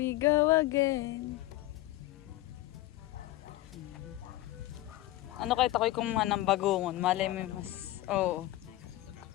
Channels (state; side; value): quieter; right; 16.5 dB